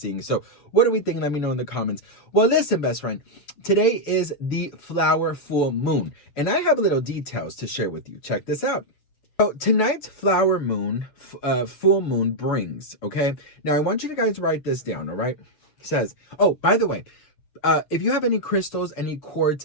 So what do we think? Let me know in the comments. Well, listen, best friend. Today is the flower full moon. And I have little details to share with you. Check this out. So tonight's flower moon, full moon brings, okay? Now I want you to guys write this down, all right? It says, oh, by the way, if you have any crystals, any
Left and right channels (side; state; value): right; late; 6.9 ms